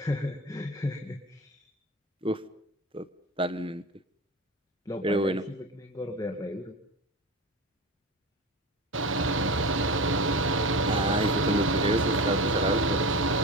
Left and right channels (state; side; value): normal; both; correlation 0.28